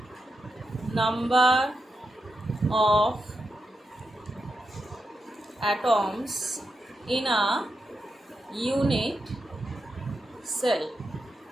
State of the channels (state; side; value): normal; both; correlation 0.87